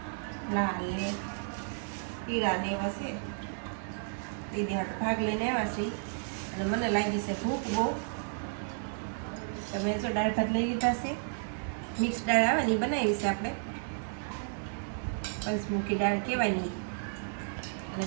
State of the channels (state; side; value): silent; left; 56 dB below the other